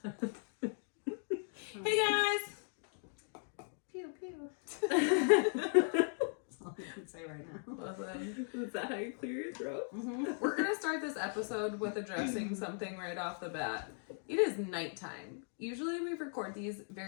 Hey guys. Pew pew. That's all I can say right now. Awesome. Is that how you clear your throat? Mm-hmm. We're gonna start this episode with addressing something right off the bat. It is nighttime. Usually we record these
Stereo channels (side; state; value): right; silent; 53 dB below the other